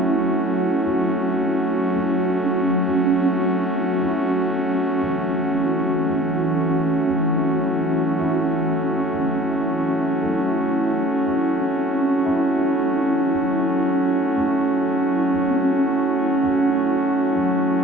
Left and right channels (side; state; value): both; normal; correlation 0.50